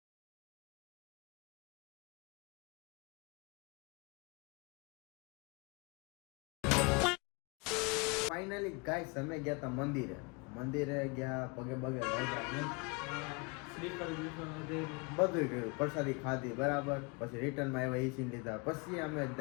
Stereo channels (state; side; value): quieter; right; 29.5 dB